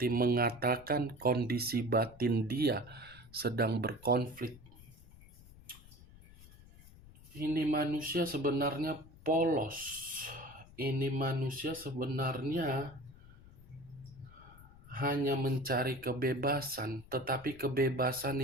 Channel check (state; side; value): noise; left; rumble, 21 dB below the sound